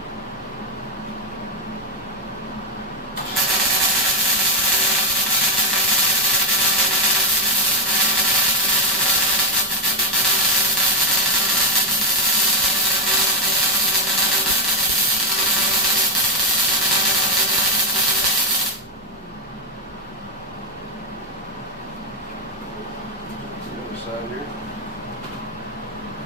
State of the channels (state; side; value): normal; both; correlation 0.04